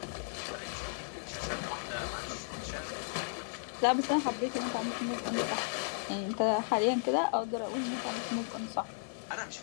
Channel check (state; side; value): silent; right; digital silence